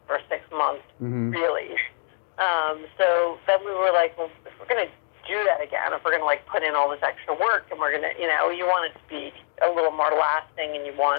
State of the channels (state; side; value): silent; right; 56 dB below the other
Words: for 6 months, really. So then we were well, if we're going to do that again, if we're going to put in all this extra work, and we're going to, you want it to be a little more lasting, and you